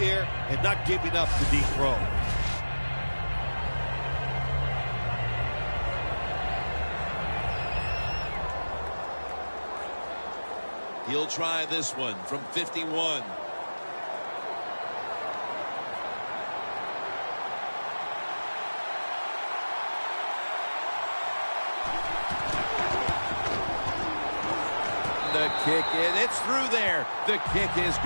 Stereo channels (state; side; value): inverted; both; correlation -1.00